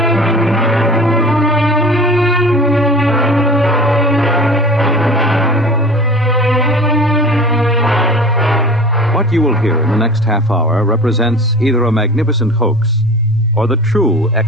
What you will hear in the next half hour represents either a magnificent hoax or the true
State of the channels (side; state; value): both; normal; correlation 0.38